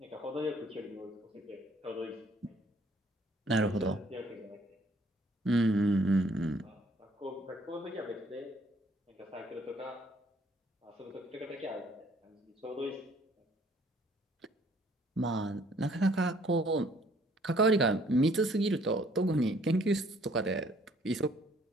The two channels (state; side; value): normal; both; correlation 0.61